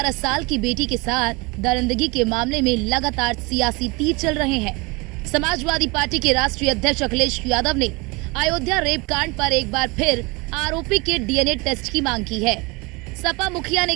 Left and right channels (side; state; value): left; quieter; 26.2 dB